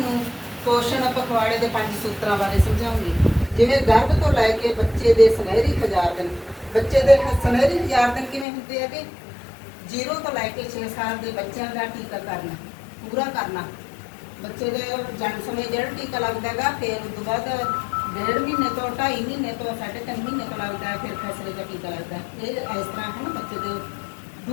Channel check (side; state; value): right; drops out; at 8.5 s